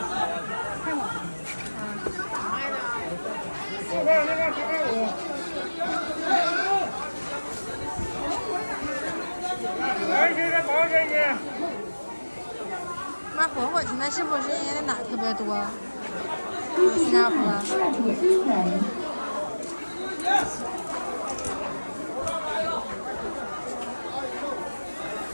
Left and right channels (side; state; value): both; inverted; correlation -1.00